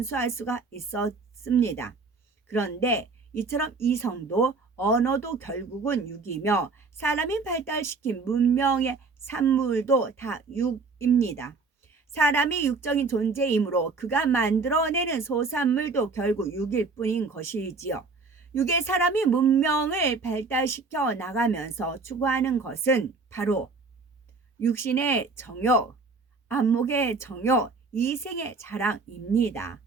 수가 있었습니다. 그런데 이처럼 이성도 언어도 결국은 육이며 사람이 발달시킨 문명의 산물도 다 육입니다. 사람이 육적인 존재이므로 그가 만들어내는 소산물도 결국 육일 뿐인 것이지요. 육의 사람이 문명을 발달시켜 나가면서 추구하는 것은 바로 육신의 정욕, 안목의 정욕, 이생의 자랑입니다.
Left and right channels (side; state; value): left; quieter; 4.1 dB